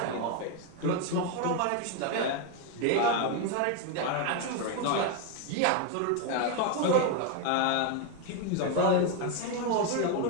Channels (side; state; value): both; different; correlation 0.01